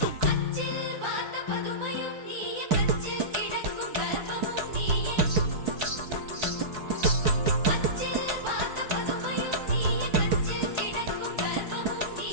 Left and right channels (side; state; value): left; late; 4.6 ms